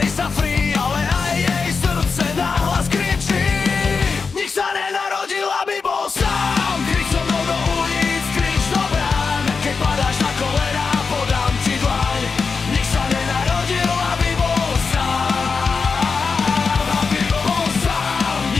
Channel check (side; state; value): right; quieter; 4.9 dB